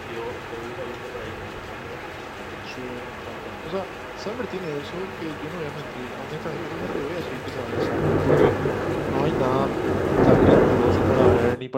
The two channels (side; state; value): both; identical; correlation 1.00